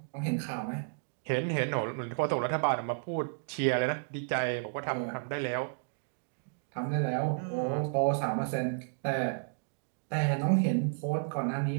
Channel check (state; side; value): silent; left; digital silence